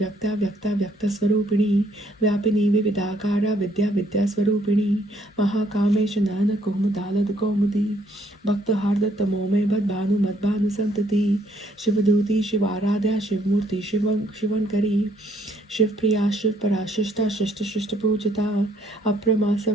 व्यक्ता व्यक्त स्वरूपिणी व्यापिनी विविधाकारा विद्या विद्या स्वरूपिणी महाकामेश नयन कौमुदालद कौमुदी भक्त हार्द तमोमय बद भानु मद भानु संतति शिवदूती शिवाराध्या शिवमूर्ति शिवंकरी शिवप्रिया शिव पराशिष्टा शिष्ट शिष्ट पूजिता अप्रमास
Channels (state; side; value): normal; both; correlation 0.67